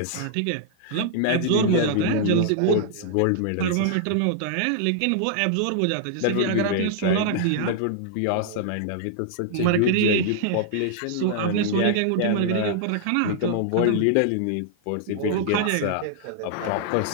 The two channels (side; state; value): both; different; correlation -0.01